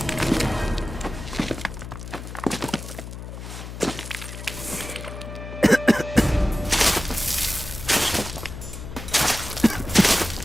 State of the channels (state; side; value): noise; left; hum, 10 dB below the sound